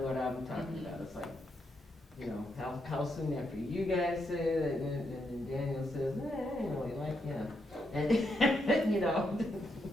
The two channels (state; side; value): normal; both; correlation 0.80